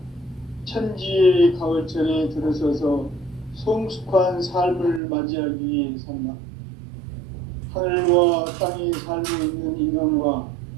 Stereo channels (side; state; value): left; drops out; at 5.0 s